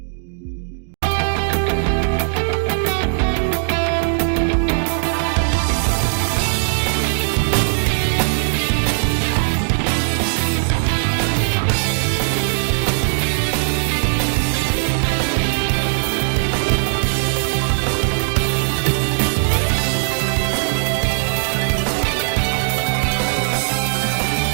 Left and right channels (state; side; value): silent; left; digital silence